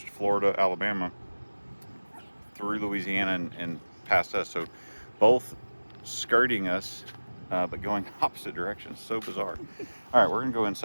Florida, Alabama, through Louisiana and past us. So both skirting us, but going opposite directions. So bizarre. All right, we're gonna go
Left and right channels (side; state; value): both; inverted; correlation -1.00